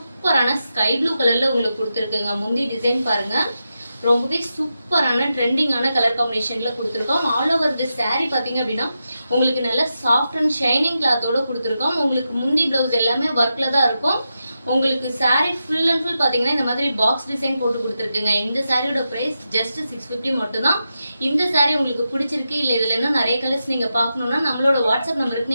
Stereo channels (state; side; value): inverted; both; correlation -0.88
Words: ஸ்கை ப்ளூ கலர்ல உங்களுக்கு கொடுத்துருக்குங்க. முந்தி டிசைன் பாருங்க, ரொம்பவே சூப்பரான ட்ரெண்டிங்கான கலர் காம்பினேஷன்ல கொடுத்துருக்கோம். ஆல் ஓவர் தி சாரி பாத்தீங்க அப்படின்னா உங்களுக்கு நல்ல சாஃப்ட் அண்ட் ஷைனிங் கிளாத்தோட கொடுத்துருக்கோம். உங்களுக்கு முந்தி பிளவுஸ் எல்லாமே ஒர்க்ல தான் இருக்கும். உங்களுக்கு சாரி ஃபுல் அண்ட் ஃபுல் பாத்தீங்கன்னா இந்த மாதிரி பாக்ஸ் டிசைன் போட்டு கொடுத்துருக்குங்க. இந்த சாரியோட பிரைஸ் ஜஸ்ட் 650 மட்டும் தான். இந்த சாரி உங்களுக்கு பிடிச்சிருக்கு இல்ல இதுல இன்னும் நிறைய கலர்ஸ் நீங்க பாக்கணும்னா நம்மளோட வாட்ஸ்அப்